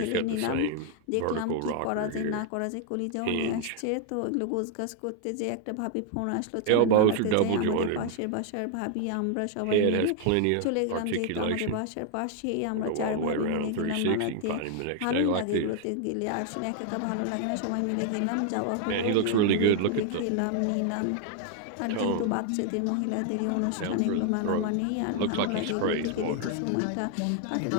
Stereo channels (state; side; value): different; both; correlation 0.00